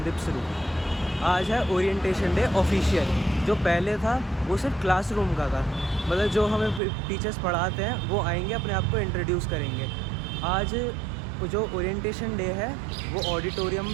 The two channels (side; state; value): left; drops out; at 6.8 s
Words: दिप्सरू। आज है orientation day official. जो पहले था वो सिर्फ क्लासरूम का था, मतलब जो हमें टीचर्स पढ़ाते हैं वो आएंगे, अपने आप को इंट्रोड्यूस करेंगे। आज जो ओरिएंटेशन डे है वो ऑडिटोरियम